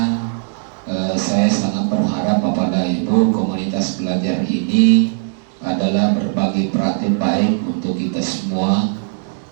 saya sangat berharap Bapak dan Ibu, komunitas belajar ini adalah berbagi praktik baik untuk kita semua.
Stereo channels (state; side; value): silent; left; digital silence